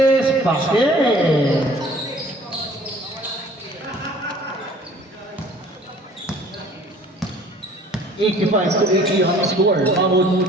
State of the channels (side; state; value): both; normal; correlation 0.51